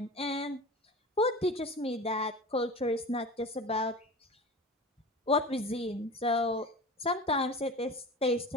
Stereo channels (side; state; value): both; normal; correlation 0.33